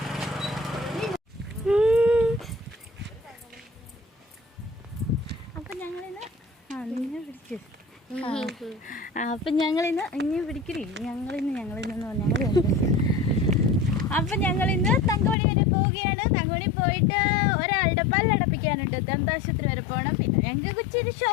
അപ്പൊ ഞങ്ങളിന്ന് തങ്കമണി വരെ പോവുകയാണ്. തങ്കമണി പോയിട്ട് ഒരാളുടെ പല്ലടപ്പിക്കാനുണ്ട്, ദന്താശുപത്രി വരെ പോകണം. പിന്നെ ഞങ്ങൾക്ക് ഇച്ചിരി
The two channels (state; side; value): drops out; right; at 15.4 s